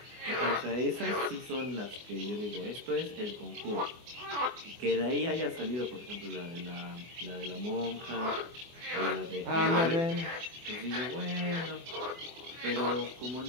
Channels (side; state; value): left; late; 24 ms